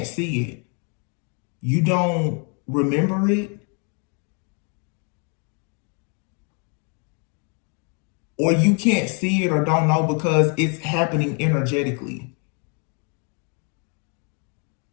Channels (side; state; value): right; quieter; 38.0 dB